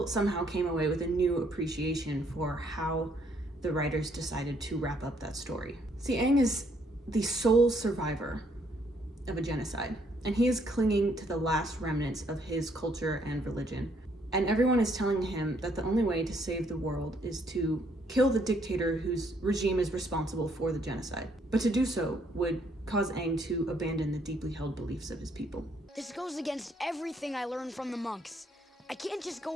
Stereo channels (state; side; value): normal; both; correlation 0.69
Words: somehow came away with a new appreciation for how the writers decided to wrap up that story. See, Aang is the sole survivor of a genocide, and he is clinging to the last remnants of his culture and religion. And everyone is telling him that the only way to save the world is to kill the dictator whose regime is responsible for the genocide. But to do so would cause Aang to abandon the deeply held beliefs of his people. This goes against everything I learned from the monks. I can't just